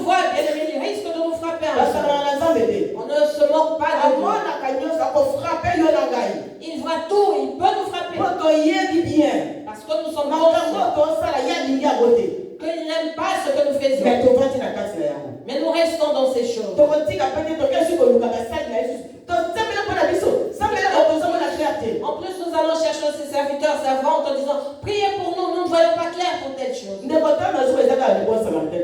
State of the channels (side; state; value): both; identical; correlation 1.00